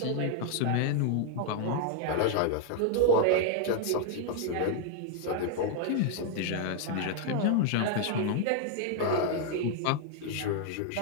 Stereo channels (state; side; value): different; both; correlation 0.00